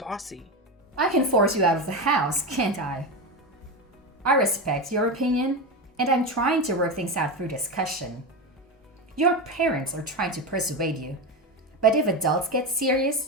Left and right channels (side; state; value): both; normal; correlation 0.18